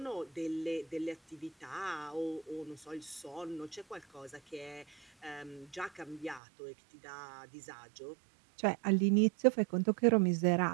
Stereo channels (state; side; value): drops out; left; at 6.4 s